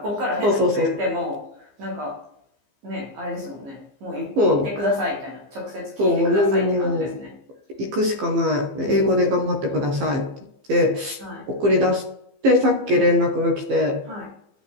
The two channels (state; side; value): late; left; 15 ms